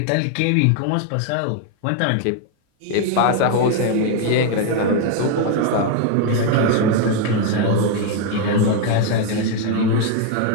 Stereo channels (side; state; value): both; different; correlation 0.01